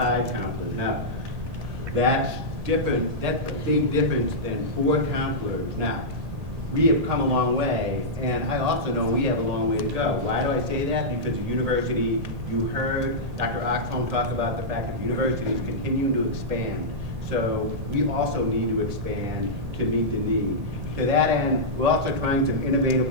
Now, that's different. That's a big difference than 4 counselors. Now, we have come a long way, and I also know we have a long way to go. Why do I say that? Because the university, you heard Dr. Oxholm talk about the fact that the university is continuing to expand. So we also need to expand to meet the need. To that end, we're also trying some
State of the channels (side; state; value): left; late; 2.1 ms